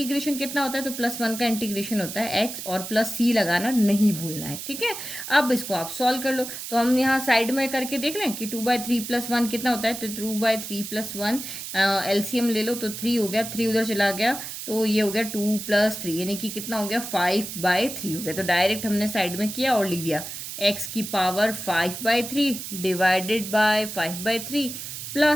कितना होता है, तो +1 का इंटीग्रेशन होता है x, और प्लस c लगाना नहीं भूलना है। ठीक है, अब इसको आप सॉल्व कर लो, तो हम यहाँ साइड में करके देख लें कि 2/3+1 कितना होता है, तो 2/3+1 एलसीएम ले लो तो 3 हो गया, 3 उधर चला गया तो ये हो गया 2 + 3 यानी कि कितना हो गया, 5/3 हो गया। तो डायरेक्ट हमने साइड में किया और लिख दिया x⁻5/3 divided by 5/3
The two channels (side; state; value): right; noise; hiss, 8 dB below the sound